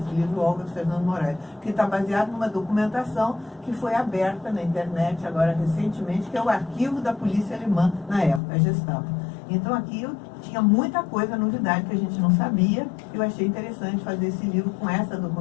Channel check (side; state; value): right; drops out; at 8.4 s